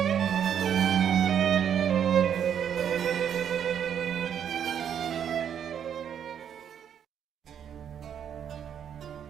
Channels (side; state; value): left; quieter; 8.7 dB